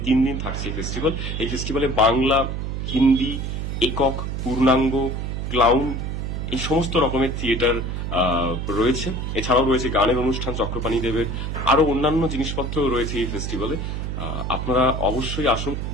3 দিন থাকছে এই ফেস্টিভ্যাল। এই ফেস্টিভ্যালে বাংলা, হিন্দি, একক, পূর্ণাঙ্গ, ক্লাউন এই সমস্ত রকমের থিয়েটার রয়েছে। এছাড়াও রয়েছে গানের অনুষ্ঠান চক্রপাণী দেবের, আরো অন্যান্য জিনিসপত্র রয়েছে এই ফেস্টিভ্যালে। আপনারা অবশ্যই আসুন।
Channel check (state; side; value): noise; right; hum, 3 dB below the sound